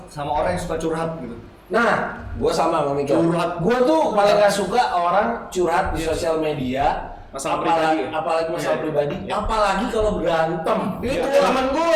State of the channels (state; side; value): identical; both; correlation 1.00